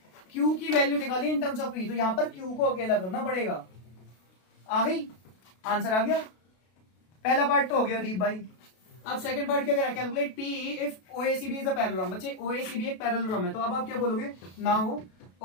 Q की वैल्यू निकाली इन टर्म्स ऑफ P, तो यहां पर Q को अकेला करना पड़ेगा। आ गई? आंसर आ गया। पहला पार्ट तो हो गया दीप भाई। अब सेकंड पार्ट क्या करें? Calculate P if OACB is a parallelogram. बच्चे OACB एक पैरेललोग्राम है, तो अब आप क्या बोलोगे? नाउ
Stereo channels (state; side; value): late; right; 33 ms